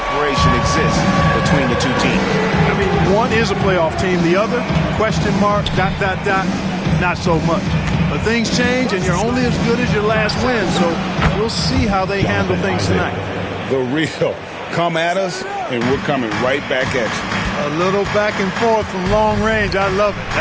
exists between the two teams. I mean, one is a playoff team. The other, question mark, ... not so much. But things change, and you're only as good as your last win. So we'll see how they handle things tonight. The real come at us, and we're coming right back at you. A little back and forth from long range. I love it.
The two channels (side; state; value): both; identical; correlation 1.00